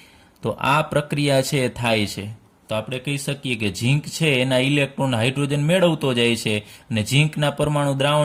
તો આ પ્રક્રિયા છે થાય છે. તો આપણે કહી શકીએ કે ઝીંક છે એના ઇલેક્ટ્રોન હાઇડ્રોજન મેળવતો જાય છે અને ઝીંકના પરમાણુ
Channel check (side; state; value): both; identical; correlation 1.00